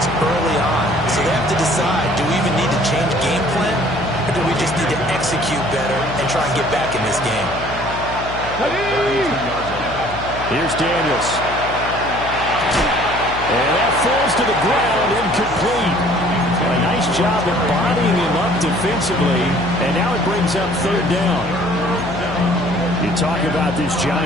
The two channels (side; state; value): left; noise; hum, 10 dB below the sound